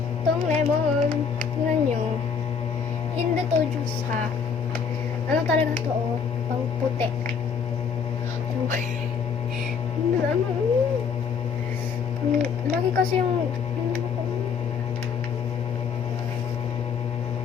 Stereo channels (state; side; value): quieter; right; 6.2 dB